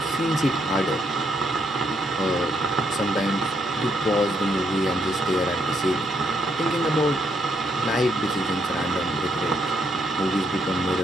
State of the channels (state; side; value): normal; both; correlation 0.74